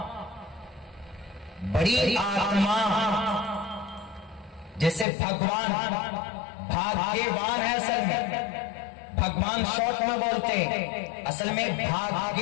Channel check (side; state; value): right; drops out; at 5.1 s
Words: बड़ी आत्मा, जैसे भगवान भाग्यवान है। असल में भगवान शॉर्ट में बोलते हैं, असल में